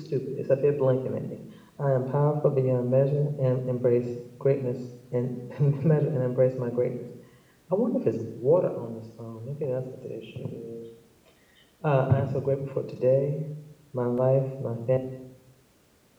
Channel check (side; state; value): both; identical; correlation 1.00